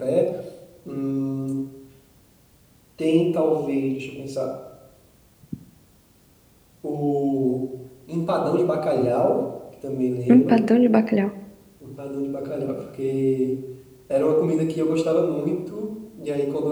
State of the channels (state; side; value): identical; both; correlation 1.00